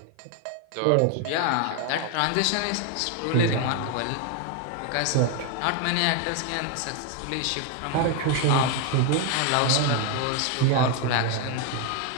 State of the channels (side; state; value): both; different; correlation 0.01